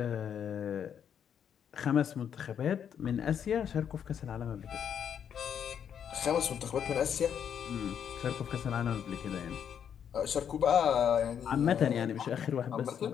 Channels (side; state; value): right; quieter; 8.4 dB